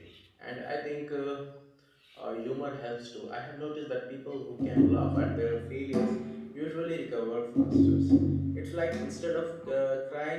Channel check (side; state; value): both; identical; correlation 1.00